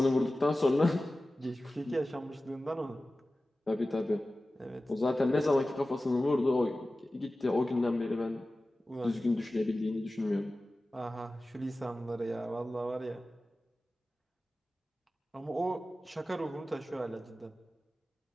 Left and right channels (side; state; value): both; normal; correlation 0.96